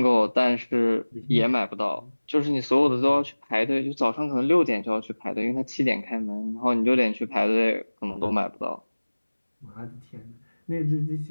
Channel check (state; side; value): inverted; both; correlation -1.00